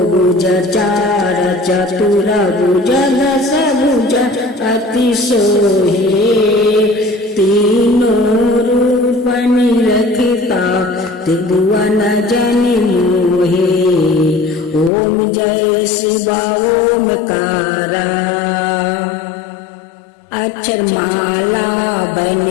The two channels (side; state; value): right; drops out; at 14.9 s